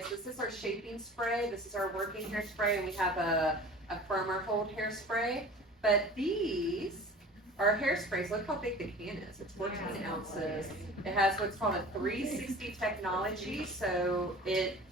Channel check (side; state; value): both; normal; correlation 0.41